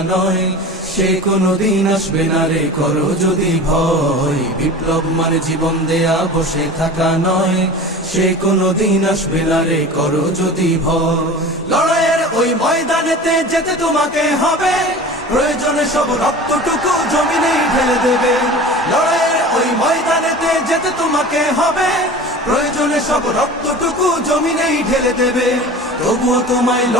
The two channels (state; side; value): normal; both; correlation 0.36